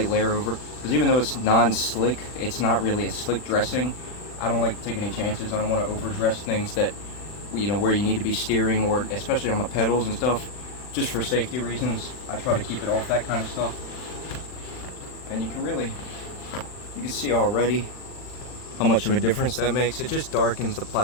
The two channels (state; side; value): late; right; 40 ms